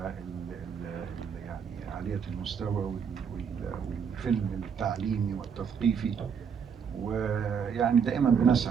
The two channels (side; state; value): left; quieter; 6.9 dB